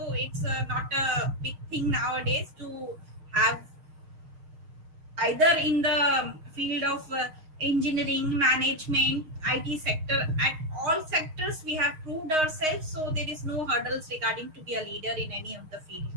it's not a big thing nowadays to have either in the field of engineering, management, IT sector. At all sectors, we have proved ourselves, so there is no hurdles regarding to be a leader in any of the field.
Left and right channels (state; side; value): late; left; 6.4 ms